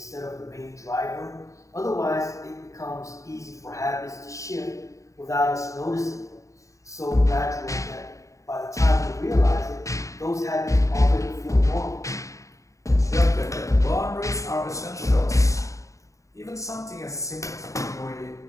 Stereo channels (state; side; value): late; right; 0.16 ms